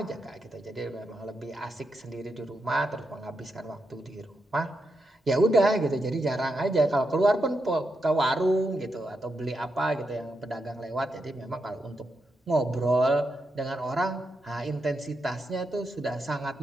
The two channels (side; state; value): both; normal; correlation 0.84